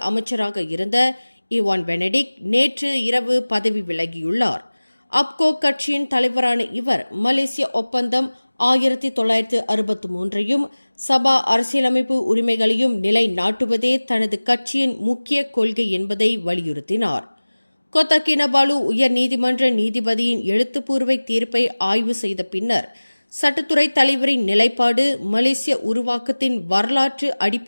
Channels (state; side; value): inverted; both; correlation -1.00